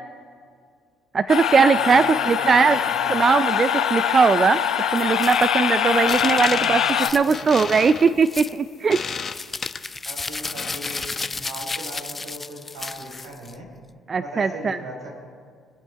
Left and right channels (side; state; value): both; normal; correlation 0.72